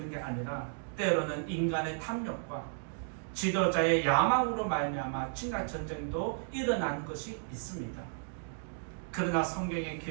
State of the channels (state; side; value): silent; left; digital silence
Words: 게 아니라 때로는 인간의 탐욕과 지도자의 야망으로 말미암아 침략 전쟁도 일어난 것이 있습니다. 그러나 성경의